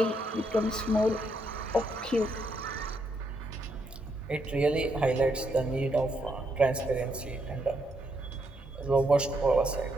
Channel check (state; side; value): normal; both; correlation 0.77